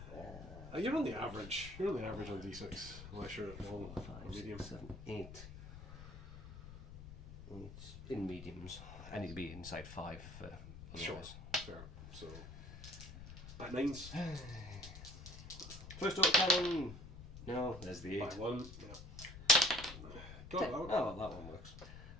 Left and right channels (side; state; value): left; noise; rumble, 12 dB below the sound